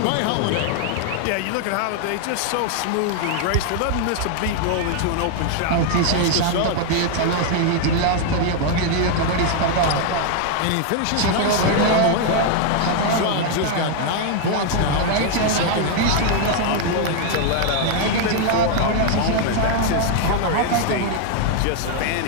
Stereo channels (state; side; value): different; both; correlation 0.00